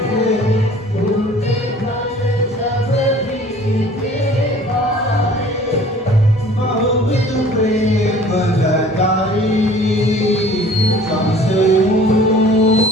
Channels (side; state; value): both; normal; correlation 0.49